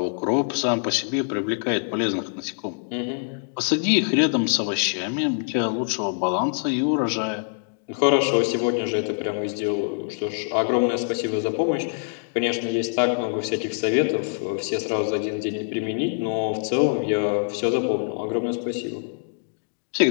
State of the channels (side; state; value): right; silent; digital silence